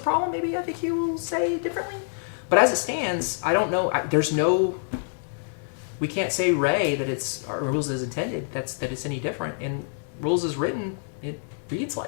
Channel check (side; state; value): right; silent; 61 dB below the other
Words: problem, maybe FAQ will say differently. But as it stands, I don't know. We can't say Ray that it's our rules as intended. That it's any different. And rules as written, it reads